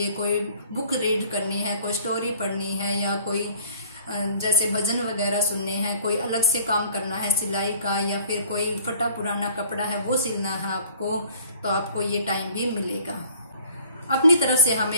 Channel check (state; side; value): inverted; both; correlation -0.53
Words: कोई बुक रीड करनी है, कोई स्टोरी पढ़नी है या कोई जैसे भजन वगैरह सुनने हैं, कोई अलग से काम करना है सिलाई का या फिर कोई फटा पुराना कपड़ा है वो सिलना है आपको, तो आपको ये टाइम भी मिलेगा। अपनी तरफ से